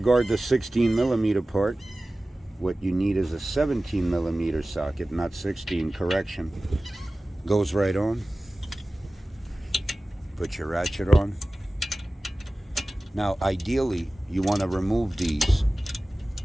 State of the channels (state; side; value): normal; both; correlation 0.97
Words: the 16mm part. What you need is a 17mm socket, not 16, correction. Goes right on. Put your ratchet on. Now ideally you want to remove these